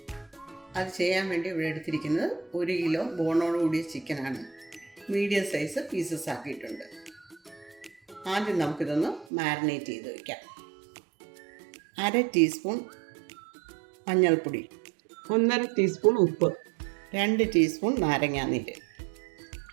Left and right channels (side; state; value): left; drops out; at 9.2 s